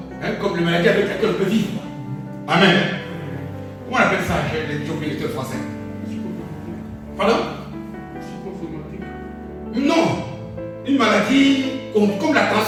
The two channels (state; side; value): identical; both; correlation 1.00